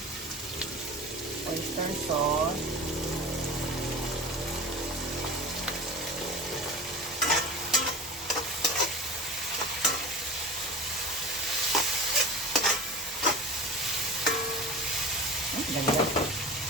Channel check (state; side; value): normal; both; correlation 0.33